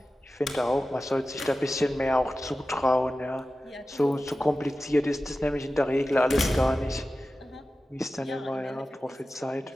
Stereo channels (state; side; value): normal; both; correlation 0.94